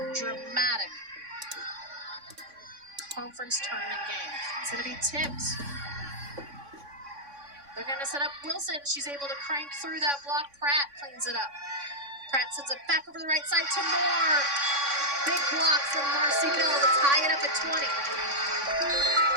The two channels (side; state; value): left; late; 3.6 ms